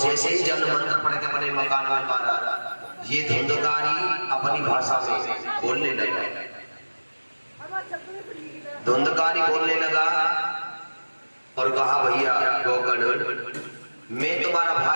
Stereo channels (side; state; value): both; inverted; correlation -1.00